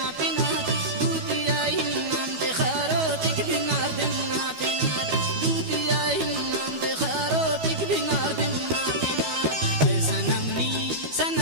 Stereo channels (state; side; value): late; left; 12 ms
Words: पिना दूतिया ही नाम ते खारो टिक बिनार दिन ना पिना दूतिया ही नाम ते खारो टिक बिनार दिन ना पिना है